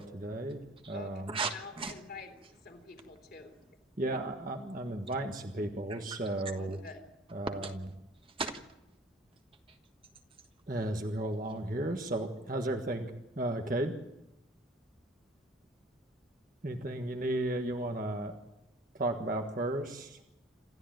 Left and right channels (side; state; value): both; normal; correlation 0.49